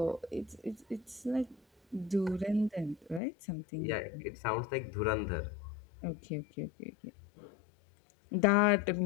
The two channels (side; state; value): right; drops out; at 3.2 s